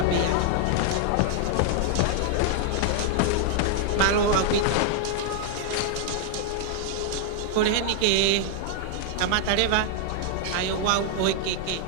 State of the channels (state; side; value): different; both; correlation 0.00